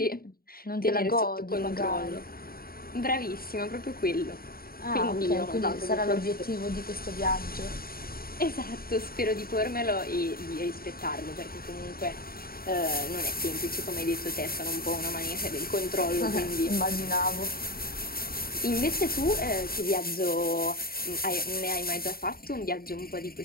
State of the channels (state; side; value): late; right; 0.43 ms